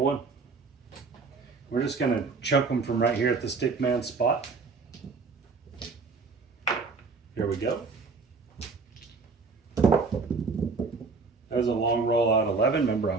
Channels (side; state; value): left; quieter; 4.4 dB